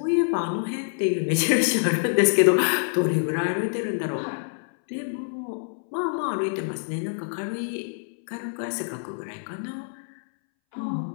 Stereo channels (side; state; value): right; silent; 61 dB below the other